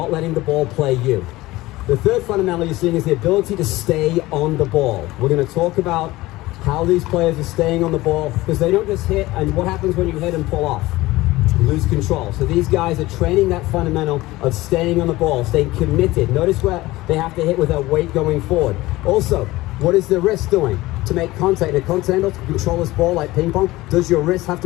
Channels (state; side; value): quieter; right; 18.7 dB